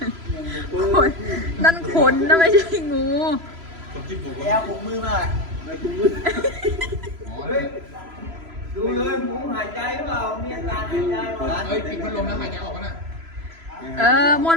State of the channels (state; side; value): late; left; 3.0 ms